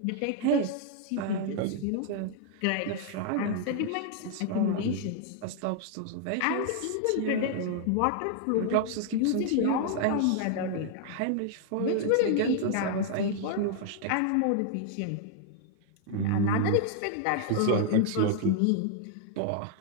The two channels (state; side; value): different; both; correlation 0.00